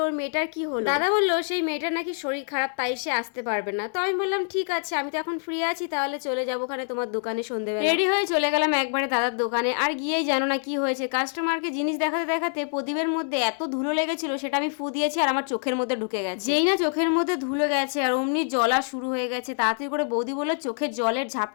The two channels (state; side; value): silent; right; 61 dB below the other